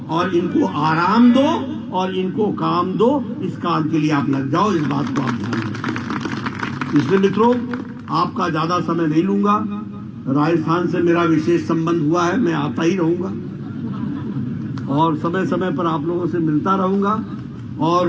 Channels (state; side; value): identical; both; correlation 1.00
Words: और इनको आराम दो और इनको काम दो। इस काम के लिए आप लग जाओ, इस बात को आप ध्यान रखें। इसलिए मित्रों, आपका ज्यादा समय नहीं लूंगा। राजस्थान से मेरा विशेष संबंध हुआ है, मैं आता ही रहूंगा और समय समय पर आप लोगों से मिलता रहूंगा। और